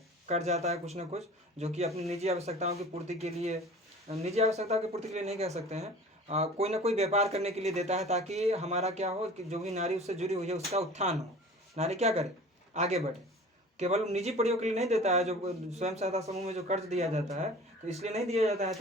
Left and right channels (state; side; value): normal; both; correlation 0.42